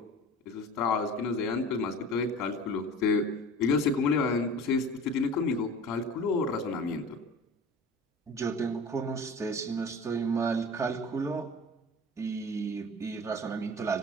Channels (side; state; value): both; normal; correlation 0.39